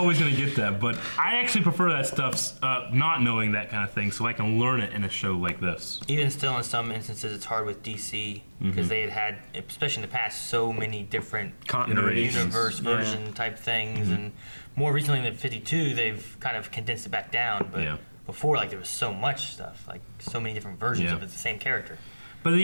gonna get that, but I actually prefer that stuff not knowing that kind of thing so I can learn it in a show like this. even still, in some instances, it's hard with DC because they had, especially in the past, so many different Continuities. universe version type things, and more recently in the 52, they've kind of condensed it back down. But before, like there was so much stuff, like so many different versions of the same character. But then,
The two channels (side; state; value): both; inverted; correlation -1.00